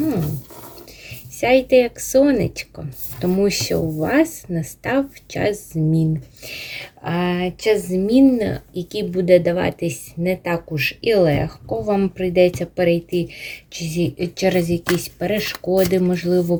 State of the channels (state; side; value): identical; both; correlation 1.00